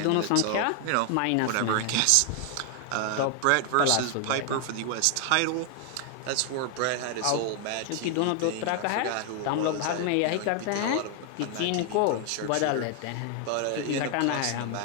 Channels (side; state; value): both; different; correlation 0.00